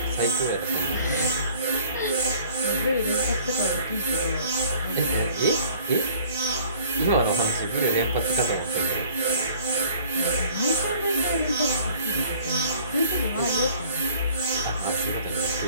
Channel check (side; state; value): both; inverted; correlation -0.53